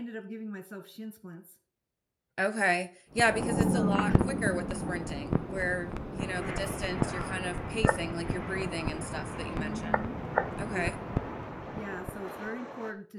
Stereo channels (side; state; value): both; identical; correlation 1.00